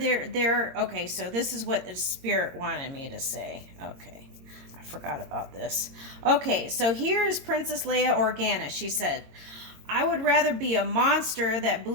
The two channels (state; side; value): late; left; 22 ms